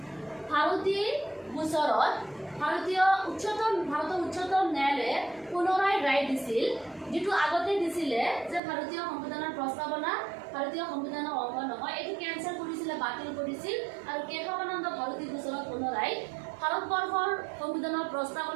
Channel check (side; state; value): left; drops out; at 8.6 s